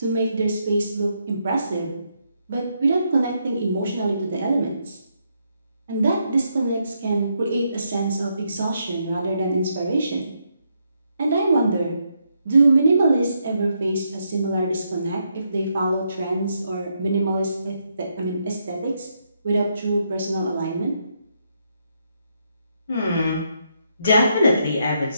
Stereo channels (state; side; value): inverted; both; correlation -0.78